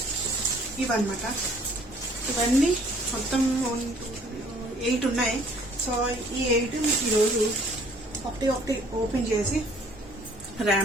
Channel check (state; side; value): normal; both; correlation 0.58